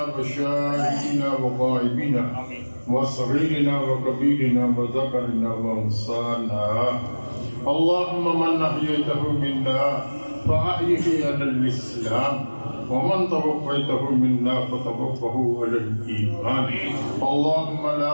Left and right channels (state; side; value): inverted; both; correlation -1.00